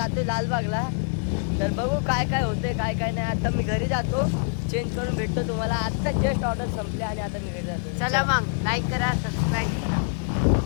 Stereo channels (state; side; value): silent; right; digital silence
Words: जातो लालबागला. तर बघू काय काय होते काय काय नाही. आता मी घरी जातो, चेंज करून भेटतो तुम्हाला. आत्ता जस्ट ऑर्डर संपले आणि आता मी घरी जातो. चला मग लाईक करा, सबस्क्राईब करा.